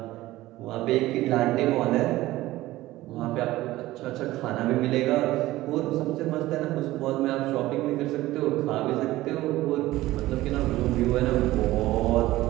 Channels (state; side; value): quieter; left; 16.9 dB